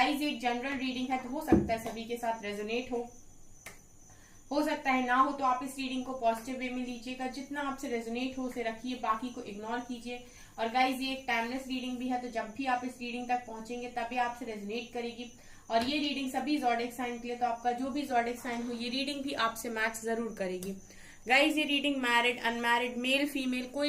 ये जनरल रीडिंग है तो हो सकता है सभी के साथ रेजोनेट हो सकता है ना हो, तो आप इस रीडिंग को पॉजिटिव वे में लीजिएगा। जितना आपसे रेजोनेट हो उसे रखिए, बाकी को इग्नोर कीजिए। और गाइज, ये एक टाइमलेस रीडिंग भी है, तो जब भी आप इस रीडिंग तक पहुंचेंगे तभी आपसे रेजोनेट करेगी। और ये रीडिंग सभी ज़ोडिएक साइन के लिए, तो आपका जो भी ज़ोडिएक साइन हो ये रीडिंग भी आपसे मैच जरूर करेगी। गाइज, ये reading married, unmarried, male female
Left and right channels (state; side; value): identical; both; correlation 1.00